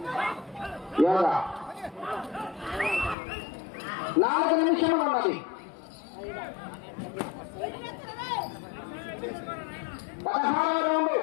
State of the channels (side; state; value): right; drops out; at 3.2 s